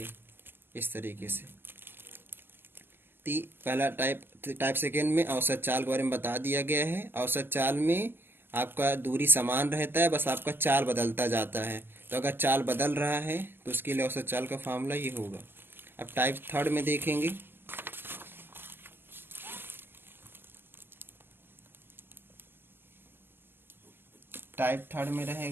इस तरीके से। पहला टाइप सेकेंड में औसत चाल के बारे में बता दिया गया है। औसत चाल में आपका दूरी समान रहता है, बस आपका चाल बदलता जाता है। तो अगर चाल बदल रहा है तो उसके लिए औसत चाल का फार्मूला ये होगा। अब टाइप थर्ड में देखेंगे, टाइप थर्ड में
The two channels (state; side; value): late; left; 0.10 ms